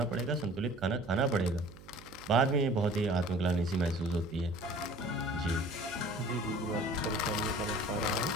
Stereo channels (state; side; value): noise; right; hum, 19 dB below the sound